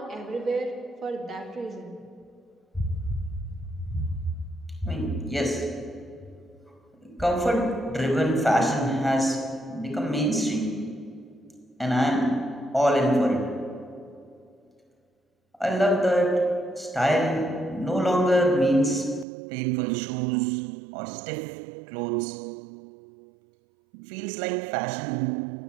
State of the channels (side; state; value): left; drops out; at 19.2 s